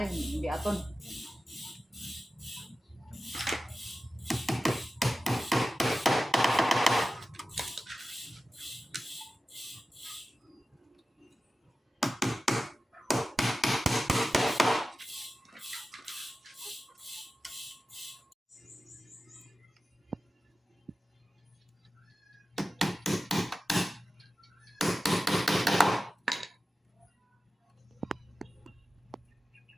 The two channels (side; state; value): both; normal; correlation 0.94